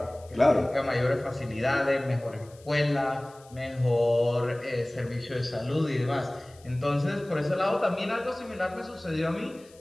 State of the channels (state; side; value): noise; left; hiss, 27 dB below the sound